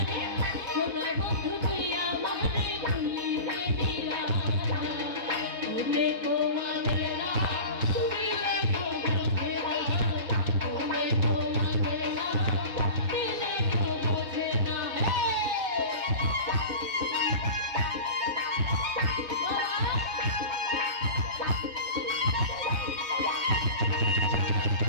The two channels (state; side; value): late; left; 4.0 ms